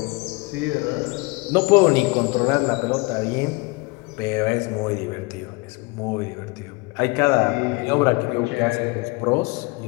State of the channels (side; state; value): right; quieter; 25.9 dB